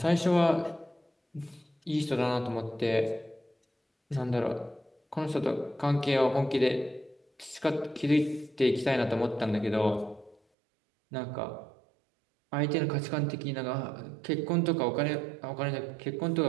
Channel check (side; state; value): left; drops out; at 10.4 s